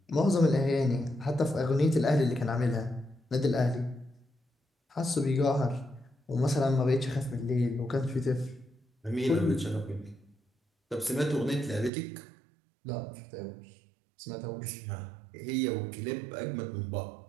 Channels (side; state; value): left; drops out; at 11.9 s